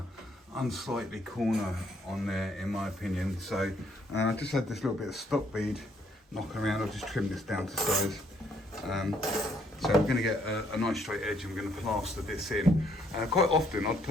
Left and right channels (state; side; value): normal; both; correlation 0.68